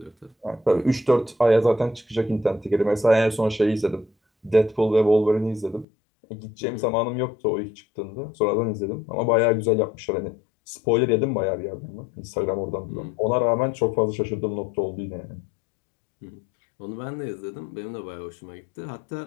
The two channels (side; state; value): right; drops out; at 5.9 s